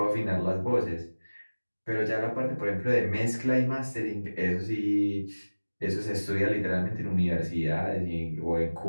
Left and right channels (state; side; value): inverted; both; correlation -1.00